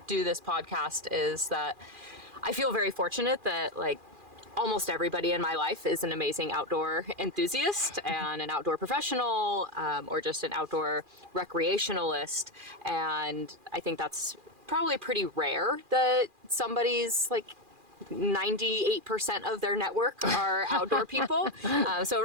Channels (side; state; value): left; late; 2.4 ms